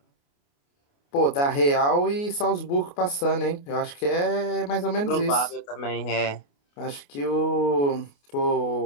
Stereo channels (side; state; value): right; late; 28 ms